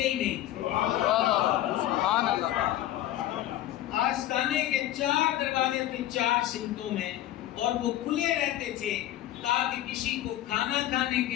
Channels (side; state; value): right; quieter; 13.6 dB